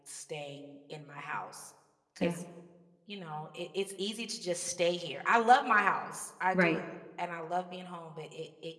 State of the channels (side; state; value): both; identical; correlation 1.00